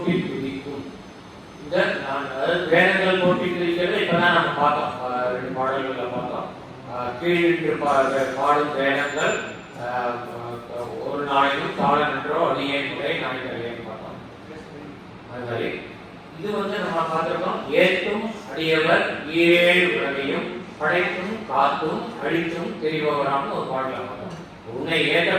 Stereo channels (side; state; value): both; identical; correlation 1.00